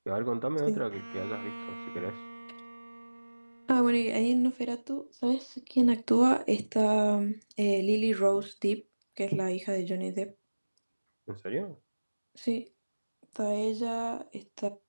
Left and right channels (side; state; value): both; inverted; correlation -1.00